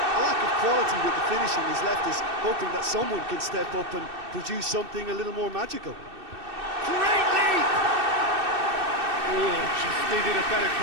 lack of quality with the finishing has left us hoping that someone can step up and produce something a little more magical. Great leap! Oh, just needed a better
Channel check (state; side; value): late; left; 2.6 ms